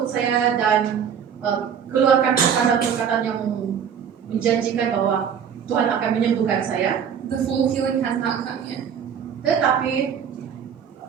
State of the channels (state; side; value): quieter; left; 7.8 dB